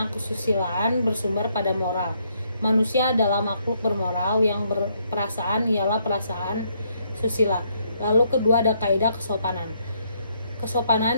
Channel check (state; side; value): inverted; both; correlation -0.72